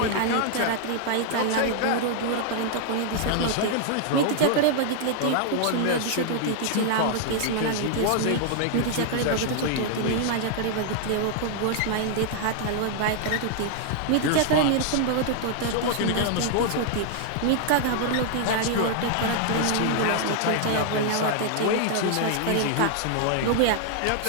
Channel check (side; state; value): both; different; correlation -0.01